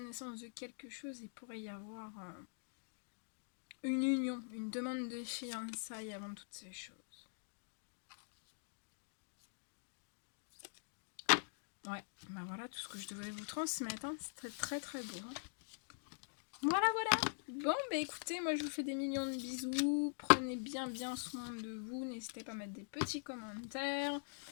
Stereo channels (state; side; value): silent; right; digital silence